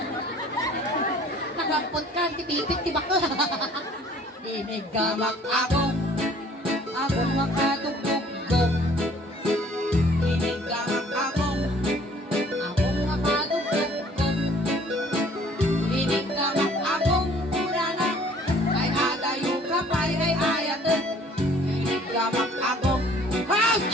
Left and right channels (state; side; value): normal; both; correlation 0.55